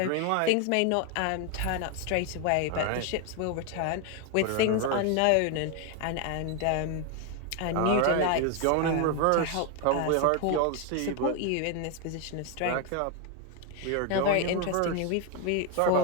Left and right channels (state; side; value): different; both; correlation 0.01